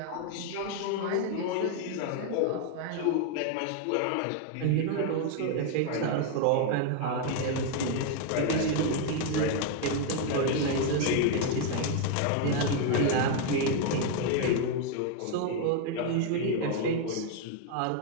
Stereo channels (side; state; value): both; different; correlation 0.01